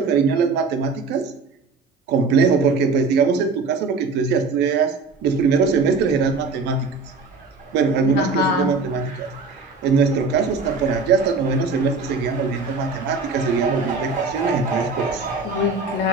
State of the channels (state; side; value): quieter; left; 4.2 dB